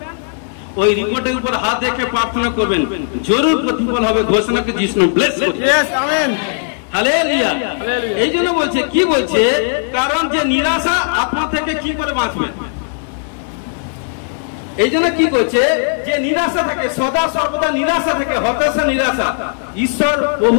ওই রিপোর্টের উপর হাত রেখে প্রার্থনা করবেন, জরুর প্রতিফল হবে। ঘোষণাকে যিশু নামে ব্লেস করি। আমেন। হালেলুয়া। এই জন্য বলছে, কি বলছে, কারণ যে নিরাশা আপনার থেকে কি করে বাঁচবেন, এই জন্য কি করছে, যে নিরাশা থাকে, সদা সর্বদা নিরাশা থাকে, হতাশা, নিরাশা, ঈশ্বর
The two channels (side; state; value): right; silent; digital silence